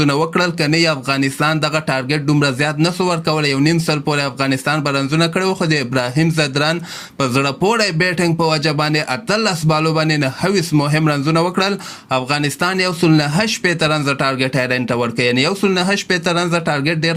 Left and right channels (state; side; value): identical; both; correlation 1.00